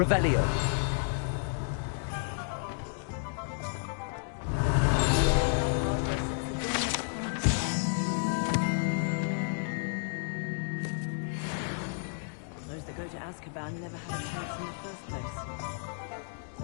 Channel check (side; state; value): right; silent; digital silence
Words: Those that go to Azkaban never had a chance in the first place.